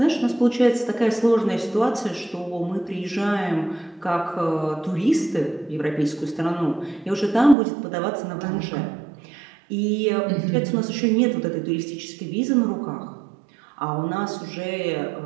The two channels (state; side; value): drops out; left; at 7.6 s